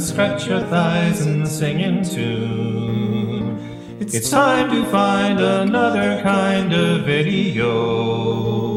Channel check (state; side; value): identical; both; correlation 1.00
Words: scratch your thighs and sing in tune. It's time to find another kind of video,